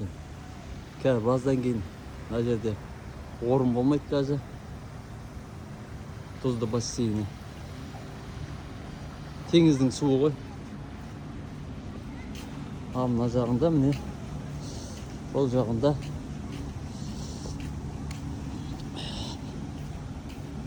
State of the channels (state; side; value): identical; both; correlation 1.00